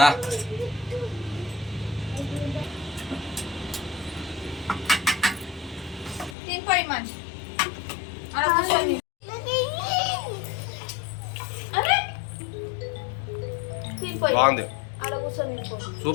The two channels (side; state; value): right; drops out; at 6.4 s